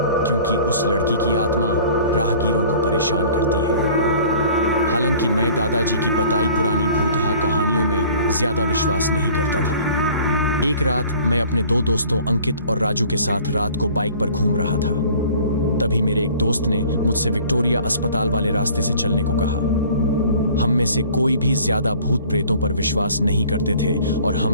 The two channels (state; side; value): inverted; both; correlation -0.49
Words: क्योंकि उस लड़की की आत्मा राहगीरों को परेशान करती है। हालांकि मैं दादाजी की बताई पुरानी भूतहा कहानियों में ज्यादा विश्वास नहीं करता था। एक रात मैं अपने 2 दोस्तों अंकित और राजू के साथ रात को बाइक पर घूम रहा था। तभी मेरे एक दोस्त ने मुझसे विक्टोरिया अस्पताल वाले रास्ते से चलने को कहा। हम में से कोई भी ज्यादा भूत प्रेतों पर विश्वास नहीं करते थे और